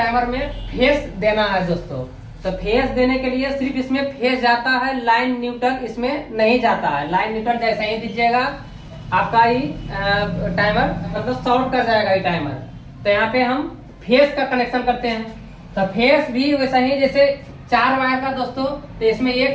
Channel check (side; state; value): both; identical; correlation 1.00